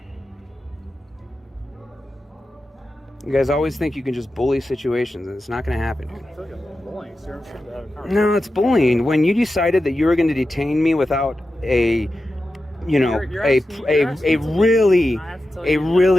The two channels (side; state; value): both; normal; correlation 0.92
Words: You guys always think you can just bully situations, and it's not going to happen, dude. I feel like I'm bullying, sir. I'm trying to have a conversation. No, it's bullying. When you decided that you were going to detain me without a you know, a